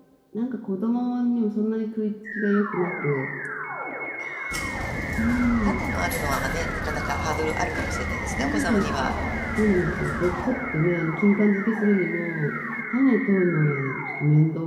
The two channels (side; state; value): both; identical; correlation 1.00